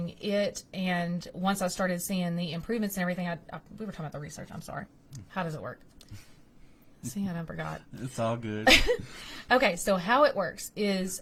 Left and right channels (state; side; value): identical; both; correlation 1.00